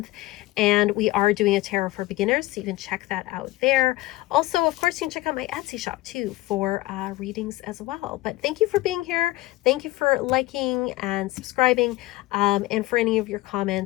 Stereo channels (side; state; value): right; quieter; 18.3 dB